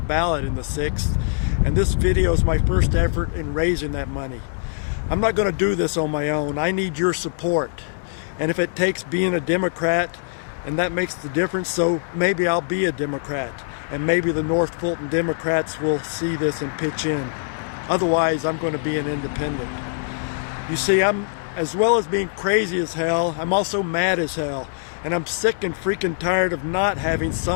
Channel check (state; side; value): silent; right; digital silence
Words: ballot in the 6th, and this video is my first effort in raising that money. I'm not going to do this on my own. I need your support. And if it takes being a Democrat, and that makes the difference, so maybe I'll be a Democrat. And maybe the North Fulton Democrats will see this and pitch in. Otherwise, I'm going to be an independent. You see, as well as being crazy as hell, I'm also mad as hell. And I'm sick and freaking tired of not having